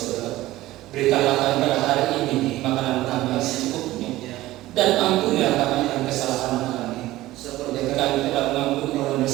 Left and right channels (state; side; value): quieter; left; 16.6 dB